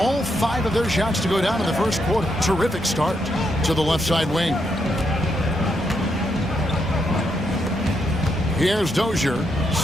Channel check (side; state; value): both; normal; correlation 0.79